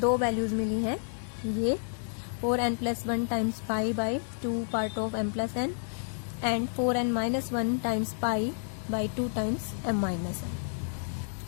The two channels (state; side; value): silent; right; 58 dB below the other